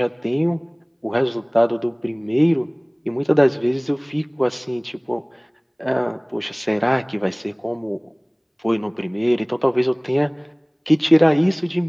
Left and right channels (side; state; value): both; identical; correlation 1.00